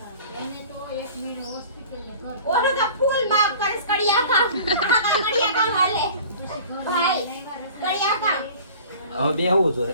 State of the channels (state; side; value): inverted; both; correlation -0.43